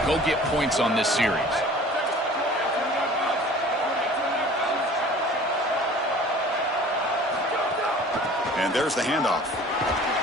go get points on this series. And there's the handoff.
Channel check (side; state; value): both; normal; correlation 0.46